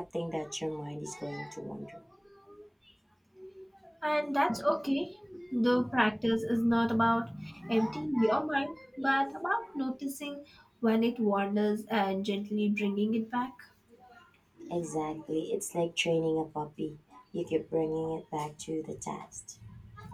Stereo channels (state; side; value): identical; both; correlation 1.00